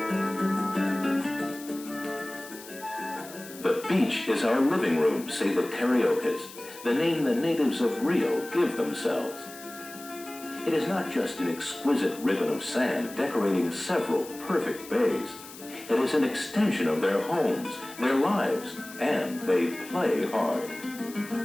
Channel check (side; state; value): left; noise; hiss, 16 dB below the sound